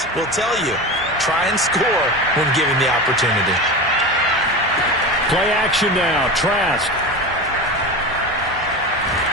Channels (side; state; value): both; normal; correlation 0.26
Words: will tell you, try and score when given the opportunity. Play action now. Trask.